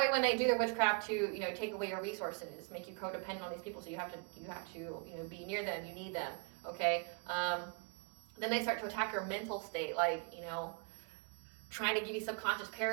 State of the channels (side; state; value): left; quieter; 36.5 dB